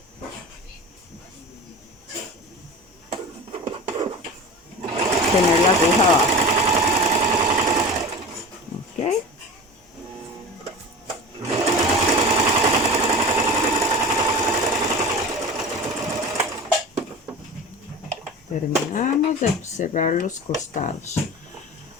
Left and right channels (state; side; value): normal; both; correlation 0.34